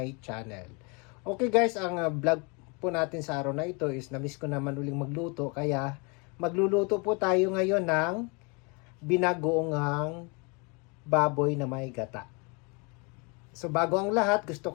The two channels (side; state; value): right; quieter; 31.8 dB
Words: channel. Okay guys, ang vlog po natin sa araw na ito is na-miss ko naman uling magluto, kaya magluluto po tayo ngayon ng binagoongang baboy na may gata. So bago ang lahat, gusto